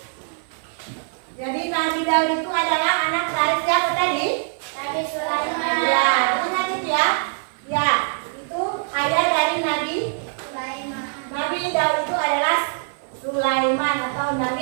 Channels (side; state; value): left; silent; 56 dB below the other